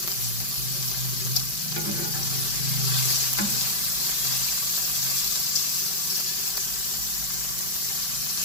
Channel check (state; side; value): late; right; 5.2 ms